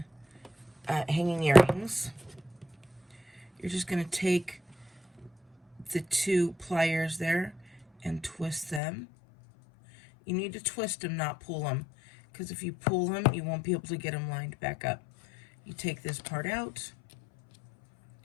earrings. You're just going to take the 2 pliers there and twist them. You need to twist them, not pull them, because if you pull them, you won't be able to get them lined back up. You take this part out,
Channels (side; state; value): right; drops out; at 8.8 s